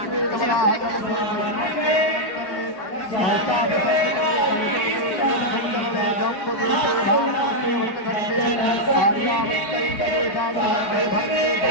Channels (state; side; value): late; right; 4.6 ms